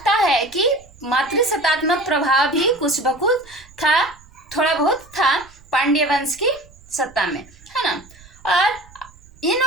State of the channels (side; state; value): right; noise; rumble, 24 dB below the sound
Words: है कि मातृसत्तात्मक प्रभाव भी कुछ बकुछ था, थोड़ा बहुत था पांड्य वंश की सत्ता में, है ना। और